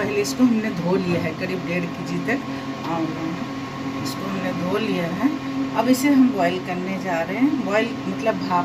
इसको हमने धो लिया है, करीब 1.5 kg तक इसको हमने धो लिया है। अब इसे हम बॉईल करने जा रहे हैं, बॉईल मतलब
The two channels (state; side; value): identical; both; correlation 1.00